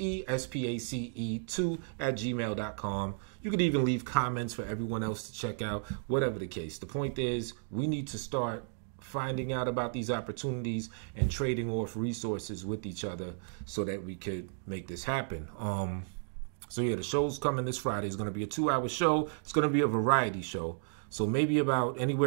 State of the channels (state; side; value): silent; left; digital silence